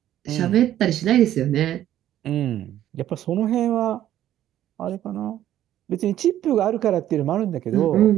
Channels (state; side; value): quieter; left; 12.1 dB